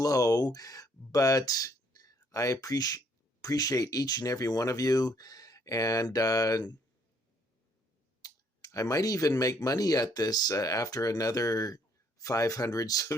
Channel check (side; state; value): both; normal; correlation 0.66